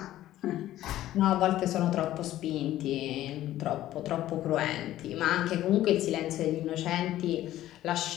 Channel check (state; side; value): quieter; right; 13.9 dB